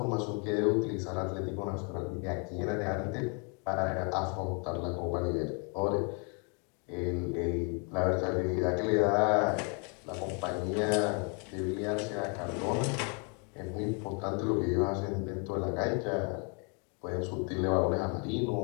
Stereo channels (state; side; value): quieter; right; 36.4 dB